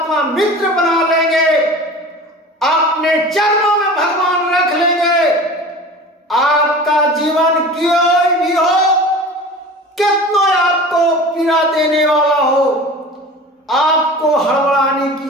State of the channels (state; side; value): normal; both; correlation 0.37